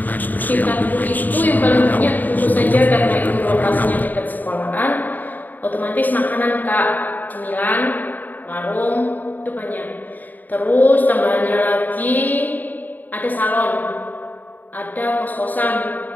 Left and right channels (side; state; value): right; late; 0.085 ms